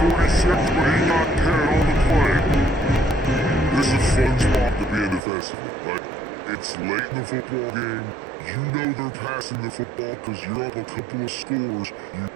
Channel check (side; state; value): left; drops out; at 5.2 s